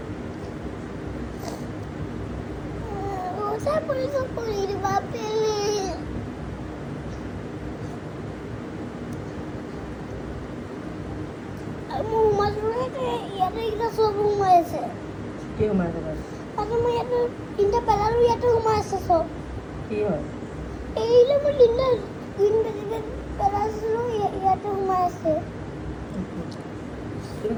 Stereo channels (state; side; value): identical; both; correlation 1.00